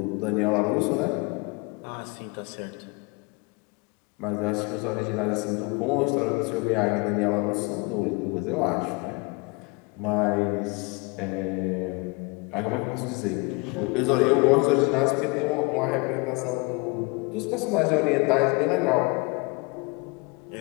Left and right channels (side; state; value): right; quieter; 28.6 dB